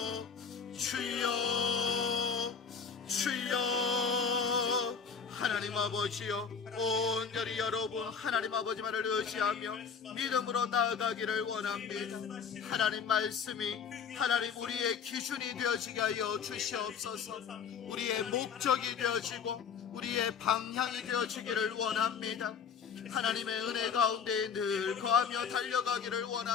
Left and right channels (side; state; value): right; quieter; 6.4 dB